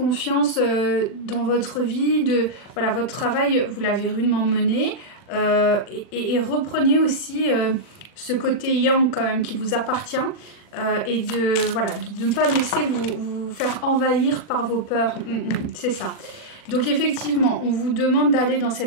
dans votre vie, voilà, votre travail, vous l'avez rudement mené, et reprenez aussi ce côté yang quand même qui vous appartient. Et voilà, de ne pas laisser vous faire envahir par vos peurs. C'est ça. Donc effectivement, on vous demande d'aller dans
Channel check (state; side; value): late; right; 40 ms